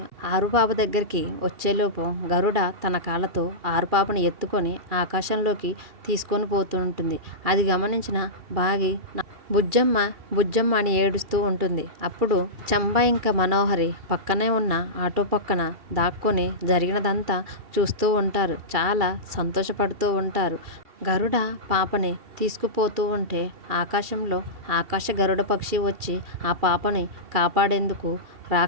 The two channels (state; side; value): late; left; 2.7 ms